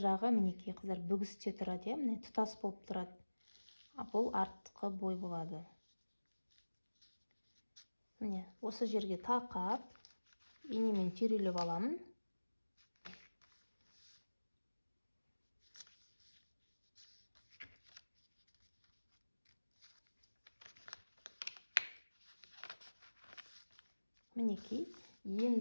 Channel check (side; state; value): both; inverted; correlation -1.00